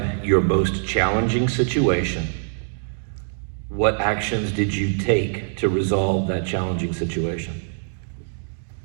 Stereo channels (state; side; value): silent; left; digital silence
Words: your most challenging situation. What actions did you take to resolve that challenging situation?